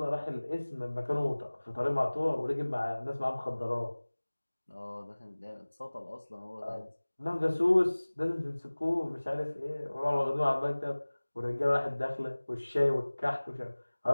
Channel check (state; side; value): inverted; both; correlation -1.00